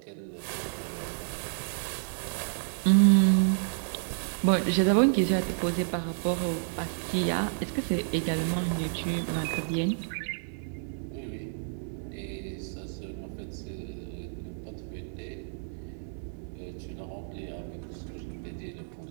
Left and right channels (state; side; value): silent; left; 58 dB below the other